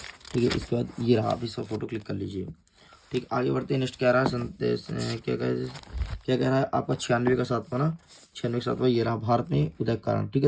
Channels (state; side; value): identical; both; correlation 1.00